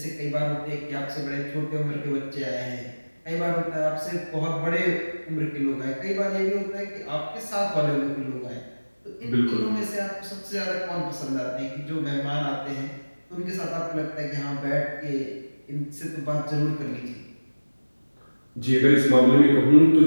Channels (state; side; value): inverted; both; correlation -1.00